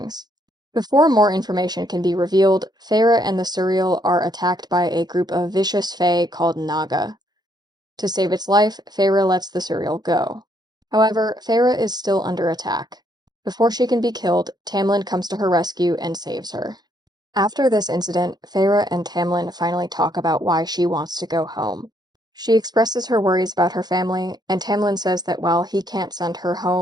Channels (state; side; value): late; left; 0.20 ms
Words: Before more information can be revealed, Feyre and the Surreal are attacked by a group of vicious fae called Naga. To save its life, Feyre lets the Surreal go. However, Feyre is still under attack. Before she can be killed, Tamlin comes to her rescue and saves her. After this incident, Feyre and Tamlin finally talk about why she wants to go home. She expresses her worries about her family, and Tamlin says that while he can't send her